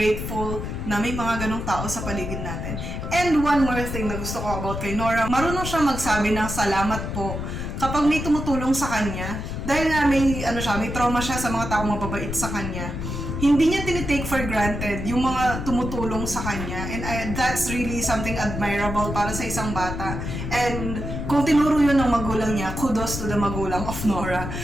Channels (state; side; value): noise; left; rumble, 5 dB below the sound